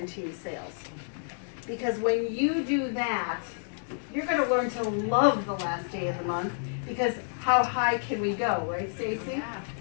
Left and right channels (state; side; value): silent; right; digital silence